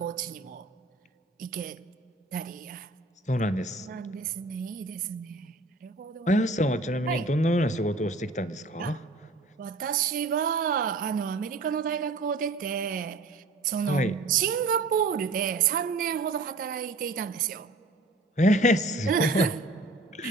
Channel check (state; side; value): quieter; left; 3.1 dB